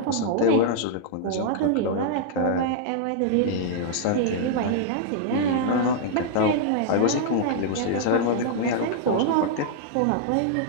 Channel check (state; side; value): different; both; correlation -0.01